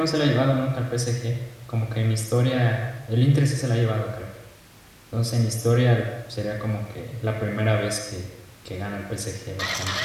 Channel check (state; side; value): identical; both; correlation 1.00